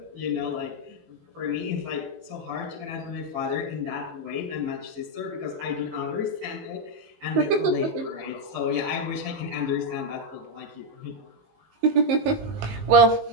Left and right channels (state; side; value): late; left; 19 ms